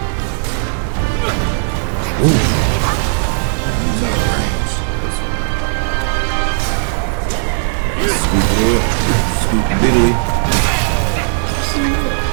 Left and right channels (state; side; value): silent; left; digital silence